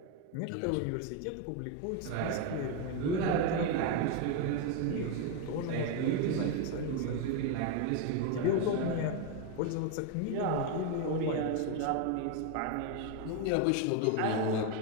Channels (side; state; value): both; different; correlation 0.01